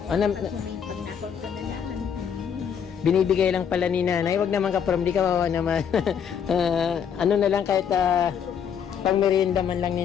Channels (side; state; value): right; quieter; 7.9 dB